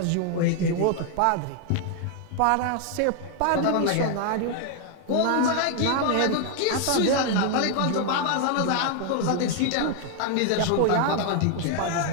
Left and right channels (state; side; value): different; both; correlation 0.00